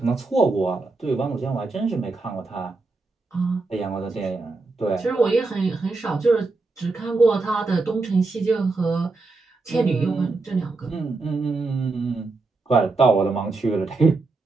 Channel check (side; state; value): left; quieter; 3.6 dB